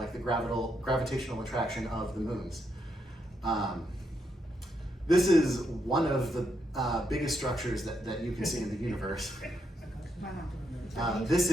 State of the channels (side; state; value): both; normal; correlation 0.79